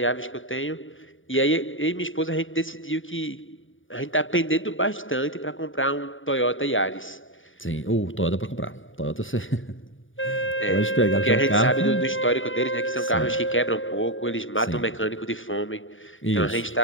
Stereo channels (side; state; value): right; late; 0.57 ms